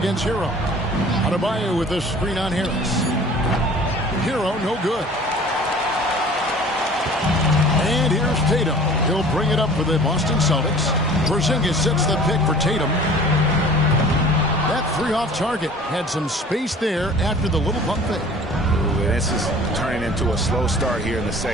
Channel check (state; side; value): normal; both; correlation 0.46